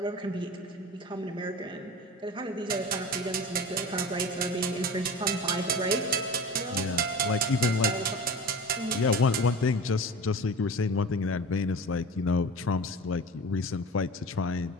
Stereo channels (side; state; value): both; normal; correlation 0.34